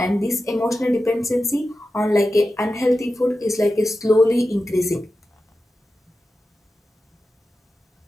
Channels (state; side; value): normal; both; correlation 0.92